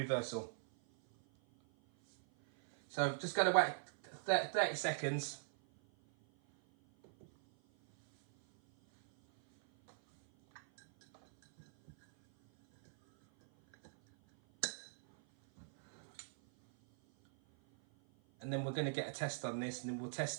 So just going to wait 30 seconds. And then we're going to get a test on this, and then we'll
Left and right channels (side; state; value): left; silent; 51 dB below the other